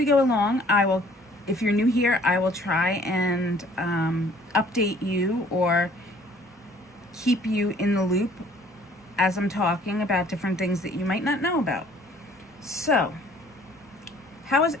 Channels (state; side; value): normal; both; correlation 0.56